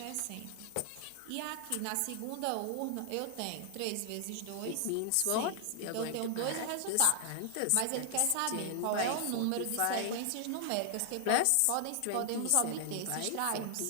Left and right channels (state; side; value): different; both; correlation 0.00